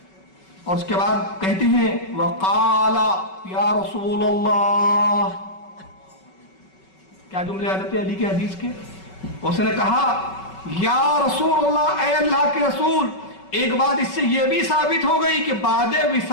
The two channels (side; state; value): right; late; 5.3 ms